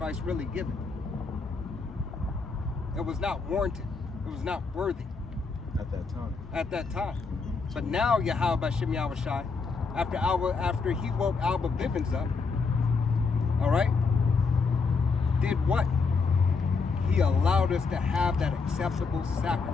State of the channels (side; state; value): right; quieter; 4.6 dB